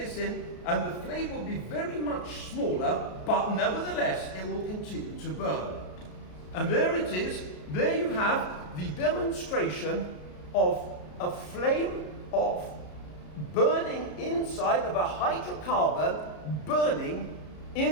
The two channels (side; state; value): right; late; 33 ms